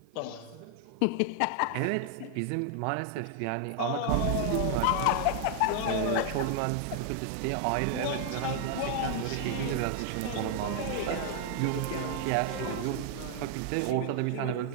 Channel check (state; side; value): different; both; correlation 0.00